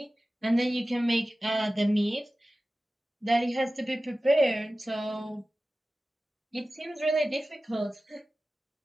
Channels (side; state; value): both; normal; correlation 0.96